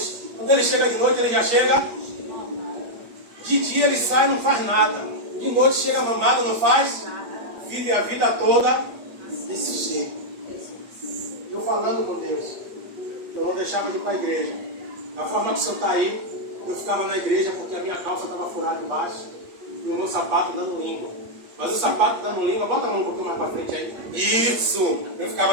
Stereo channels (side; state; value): left; late; 8.5 ms